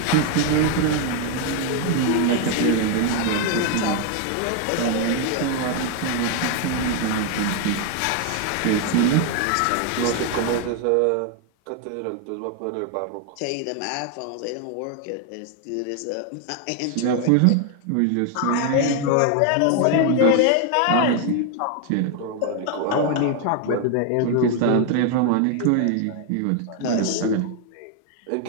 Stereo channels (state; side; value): different; both; correlation 0.01